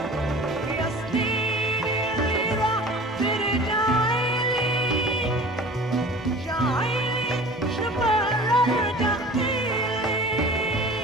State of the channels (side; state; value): both; normal; correlation 0.41